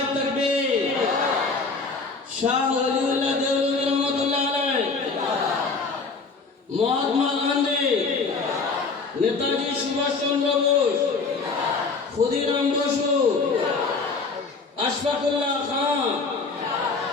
তাকবীর। শাহ ওলিউল্লাহ দেওবন্দি রহমাতুল্লাহ আলাইহি, মহাত্মা গান্ধী, নেতাজি সুভাষ চন্দ্র বোস, ক্ষুদিরাম বসু, আশফাকুল্লাহ খান,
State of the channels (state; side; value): quieter; right; 4.3 dB